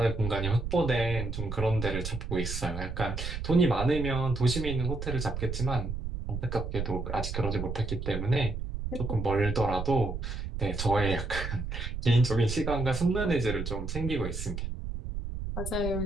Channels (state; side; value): noise; right; rumble, 5 dB below the sound